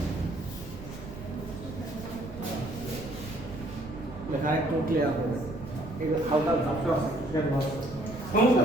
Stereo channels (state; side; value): noise; right; rumble, 13 dB below the sound